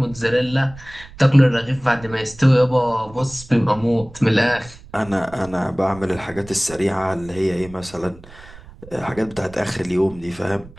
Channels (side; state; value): right; noise; rumble, 19 dB below the sound